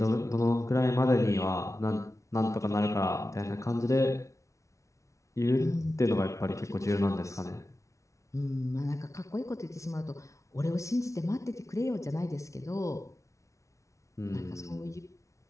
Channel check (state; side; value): late; right; 0.15 ms